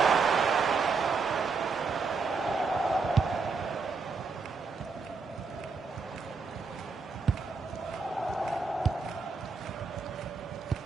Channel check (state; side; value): quieter; left; 4.6 dB